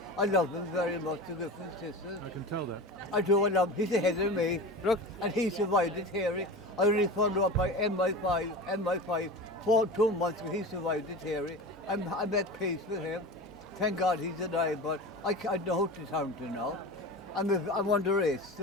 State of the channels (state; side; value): normal; both; correlation 0.30